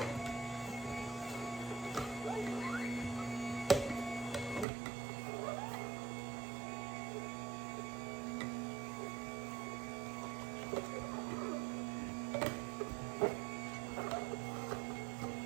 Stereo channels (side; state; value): left; drops out; at 4.7 s